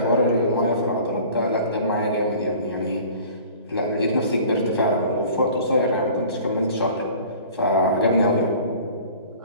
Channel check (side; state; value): both; inverted; correlation -0.46